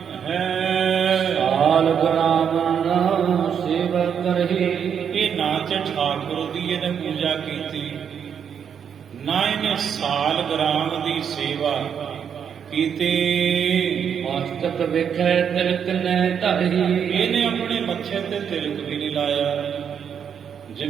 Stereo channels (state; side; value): quieter; left; 7.8 dB